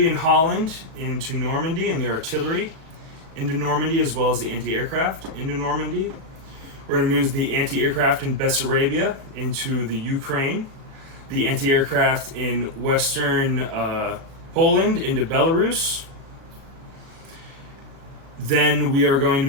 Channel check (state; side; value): late; left; 37 ms